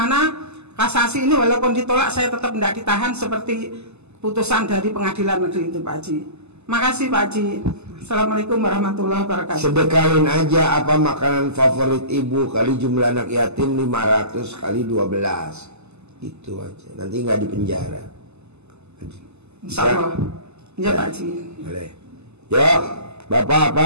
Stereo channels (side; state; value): left; late; 0.80 ms